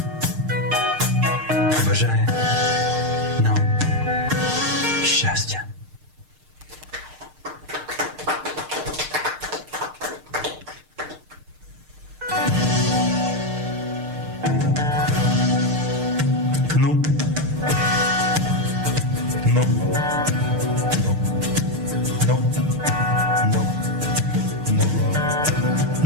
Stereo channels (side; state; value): left; late; 6.5 ms